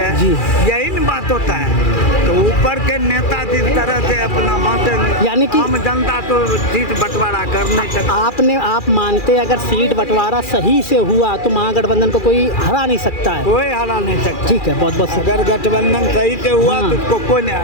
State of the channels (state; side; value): late; right; 2.4 ms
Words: यही बात होता है। तो ऊपर के नेता जिस तरह से अपना बांटे, यानी कि आम जनता तो सीट बंटवारा कर नहीं सकती। आप मानते हैं अगर सीट बंटवारा सही से हुआ तो महागठबंधन को कोई हरा नहीं सकता है? कोई हरा नहीं सकता। ठीक है, बहुत बहुत अगर गठबंधन सही से हुआ हाँ। तो उसको कोई नहीं